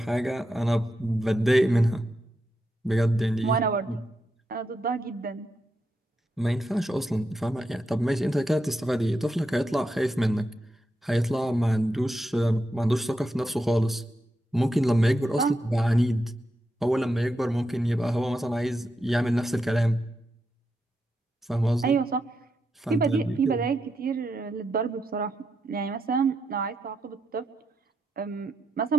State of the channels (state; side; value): normal; both; correlation 0.85